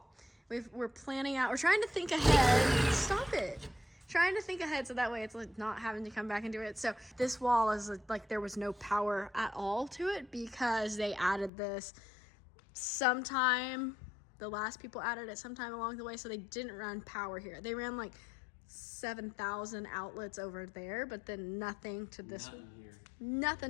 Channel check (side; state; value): right; drops out; at 11.5 s